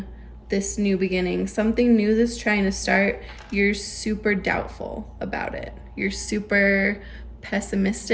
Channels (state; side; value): identical; both; correlation 1.00